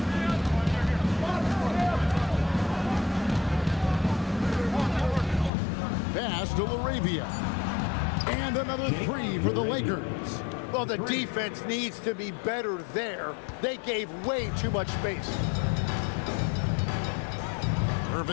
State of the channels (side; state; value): right; drops out; at 5.5 s